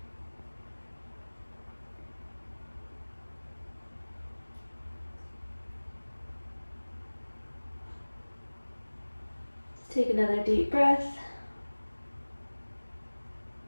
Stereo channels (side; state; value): both; inverted; correlation -1.00